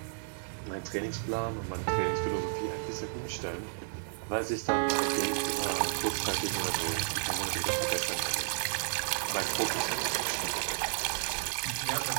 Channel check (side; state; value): left; silent; digital silence